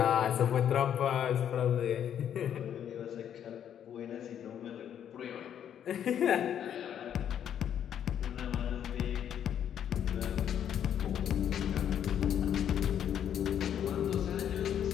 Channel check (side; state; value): right; quieter; 9.5 dB